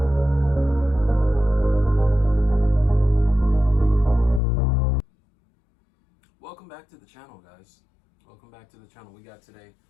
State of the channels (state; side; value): drops out; right; at 4.4 s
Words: Welcome back to the channel, guys. Welcome back to the channel. We got today